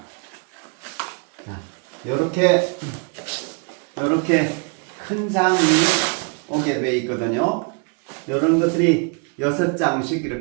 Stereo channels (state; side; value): quieter; left; 35.6 dB